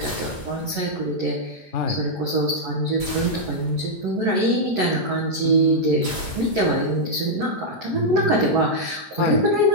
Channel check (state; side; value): late; left; 9.0 ms